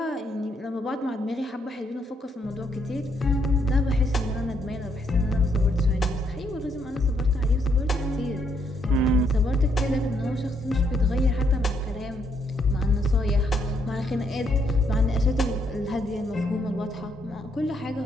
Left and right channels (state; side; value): normal; both; correlation 0.73